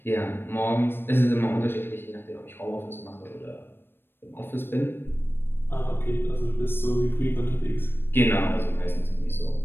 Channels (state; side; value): late; right; 0.10 ms